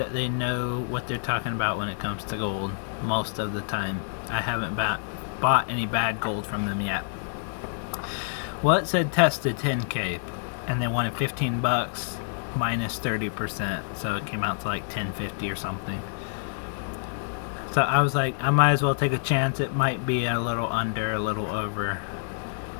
they know what they're talking about when it comes to gold most of the time. I haven't bought any bad gold from them yet. Well, it said tested 10K, and they wanted 15 bucks minus 30%, so it came out to like 10.50 or something. So I was like, I might as well take a chance. It might be a little under, a little over.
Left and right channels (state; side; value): silent; right; digital silence